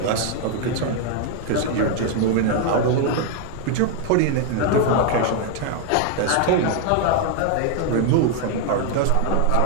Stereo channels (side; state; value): both; different; correlation 0.00